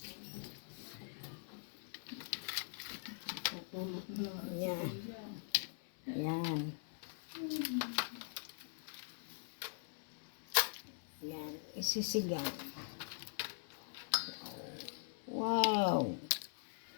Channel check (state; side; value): silent; right; digital silence